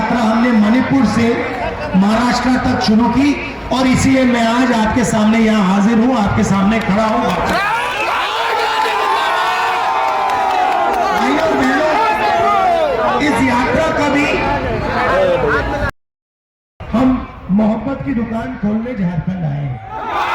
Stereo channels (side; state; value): both; identical; correlation 1.00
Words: हमने मणिपुर से महाराष्ट्र तक शुरू की। और इसीलिए मैं आज आपके सामने यहां हाजिर हूं, आपके सामने खड़ा हूं। भाइयों बहनों, इस यात्रा का भी हम मोहब्बत की दुकान खोलने झारखंड आए हैं।